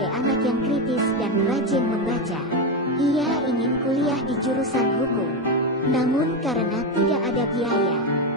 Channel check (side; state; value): both; normal; correlation 0.11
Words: anak yang kritis dan rajin membaca. Ia ingin kuliah di jurusan hukum, namun karena tidak ada biaya,